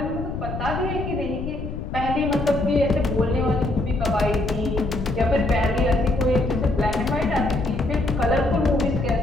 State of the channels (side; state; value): left; noise; rumble, 6 dB below the sound